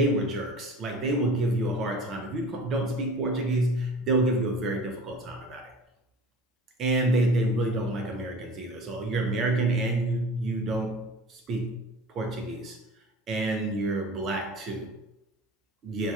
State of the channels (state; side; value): normal; both; correlation 0.41